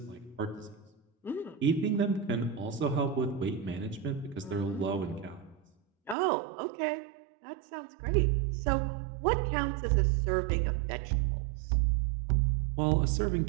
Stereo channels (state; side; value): drops out; left; at 6.2 s